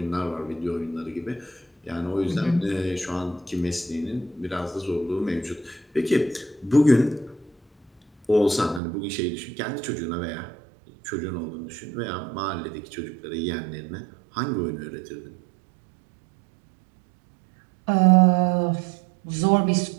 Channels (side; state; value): left; drops out; at 8.8 s